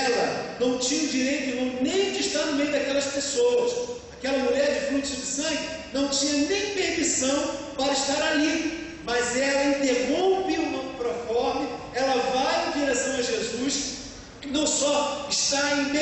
não tinha o direito, irmão, nem de estar no meio daquelas pessoas. Aquela mulher de fluxo de sangue não tinha nem permissão para estar ali, mas ela interrompe o proforme, ela vai em direção a Jesus, não só está em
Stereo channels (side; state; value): both; identical; correlation 1.00